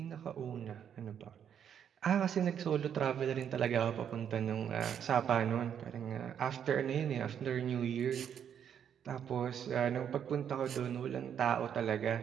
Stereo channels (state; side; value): quieter; left; 8.7 dB